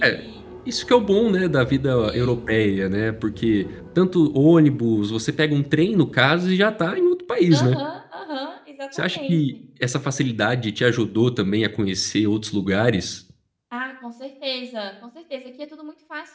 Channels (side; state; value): both; identical; correlation 1.00